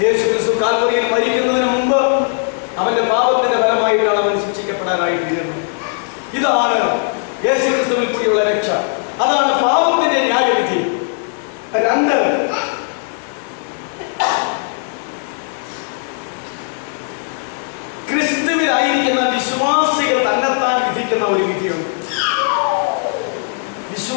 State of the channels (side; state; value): right; silent; 64 dB below the other